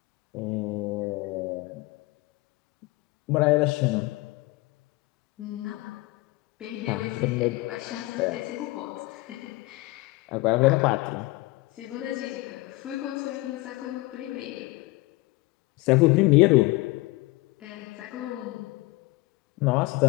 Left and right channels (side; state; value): right; quieter; 21.5 dB